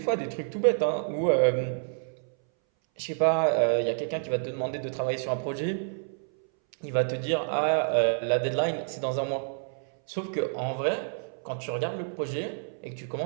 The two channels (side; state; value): left; silent; 59 dB below the other